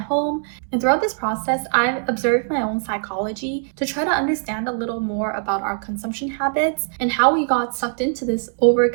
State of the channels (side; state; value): left; silent; digital silence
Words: And throughout this process, I've observed my own psychology to try to understand a little more about our consumption habits and how we got sucked into this